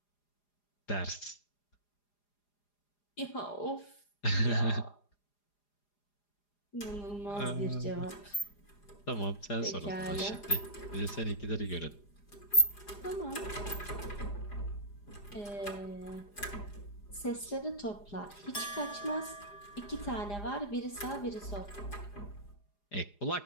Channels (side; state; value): right; late; 4.9 ms